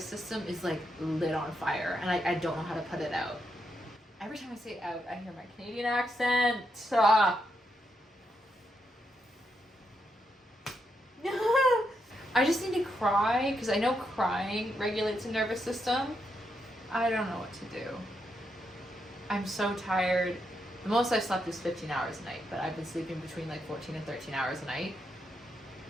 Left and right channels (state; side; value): normal; both; correlation 0.81